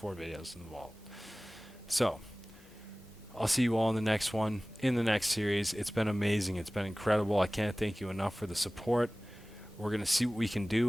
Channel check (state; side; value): normal; both; correlation 0.98